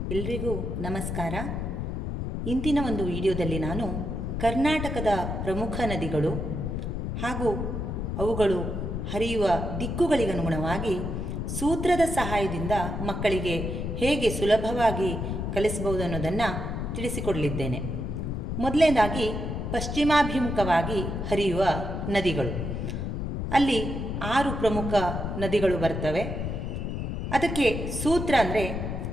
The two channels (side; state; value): left; noise; rumble, 3 dB below the sound